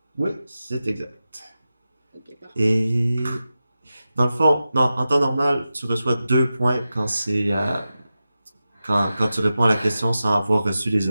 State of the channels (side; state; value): both; inverted; correlation -0.92